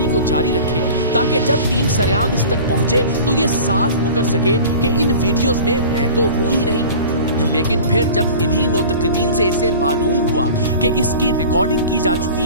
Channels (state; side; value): inverted; both; correlation -0.39